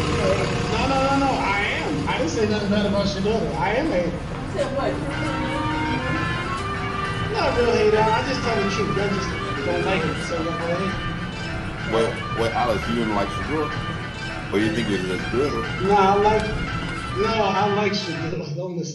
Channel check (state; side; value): identical; both; correlation 1.00